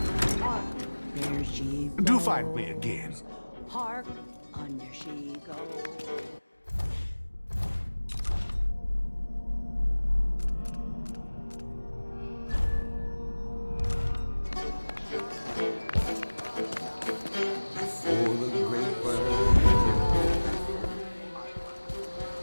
There she goes. Do find me again. Hark, under she goes. For the great bird.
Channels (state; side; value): inverted; both; correlation -1.00